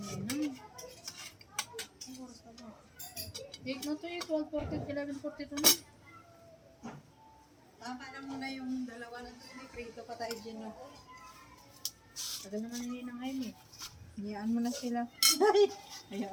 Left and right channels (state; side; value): identical; both; correlation 1.00